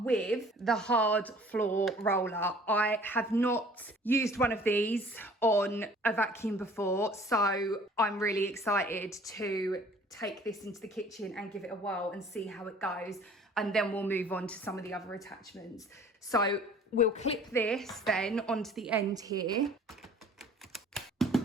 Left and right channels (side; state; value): both; normal; correlation 0.51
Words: with the hard floor roller. I have not used one of these on a vacuum before, so I'm really excited to take this into the kitchen and give it a whirl and see how it goes, and then we'll move on to some of the other attachments. So we'll clip this then onto the end here